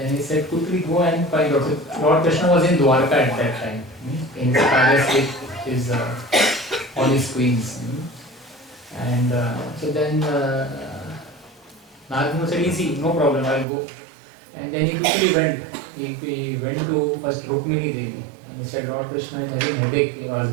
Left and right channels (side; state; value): left; drops out; at 13.7 s